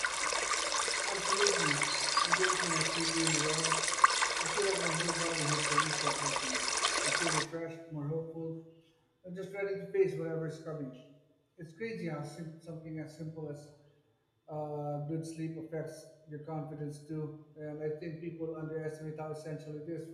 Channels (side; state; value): both; identical; correlation 1.00